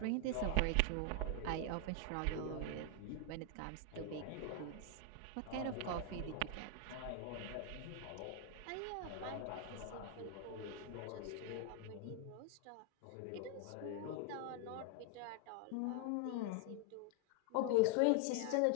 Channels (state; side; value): different; both; correlation 0.00